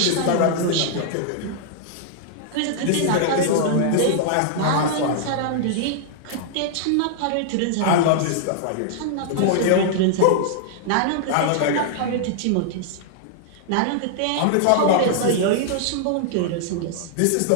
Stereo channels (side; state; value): both; different; correlation -0.01